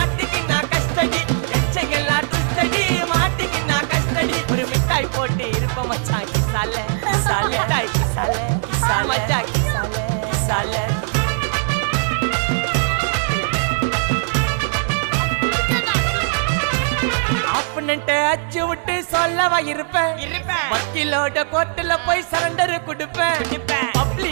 நான் கஸ்டடி எச்சங்கெல்லாம் துஸ்தடி மாட்டிக்கு நான் கஸ்டடி ஒரு மிட்டாய் போட்டு இருப்ப மச்சான் கிசால கிசால மிட்டாய் கிசால கிசால மச்சா கிசால கிசால அச்சு விட்டு சொல்லவா இருப்பேன் வக்கீலோட கோர்ட்டுல போய் சரண்டர் கொடுப்பேன்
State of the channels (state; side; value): silent; left; digital silence